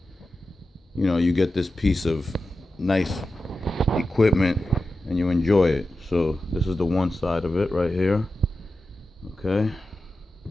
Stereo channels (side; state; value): both; normal; correlation 0.92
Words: you know, you get this piece of nice equipment and you enjoy it. So this is the one side of it right here. Okay.